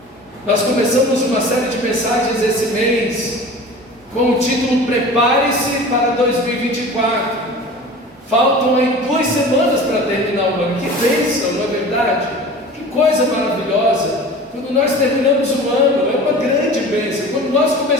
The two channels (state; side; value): normal; both; correlation 0.39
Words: Nós começamos uma série de mensagens esse mês com o título Prepare-se para 2024. Faltam aí 2 semanas para terminar o ano. Que bênção, não é verdade? Que coisa maravilhosa. Quando nós terminamos o ano, é uma grande bênção. Quando nós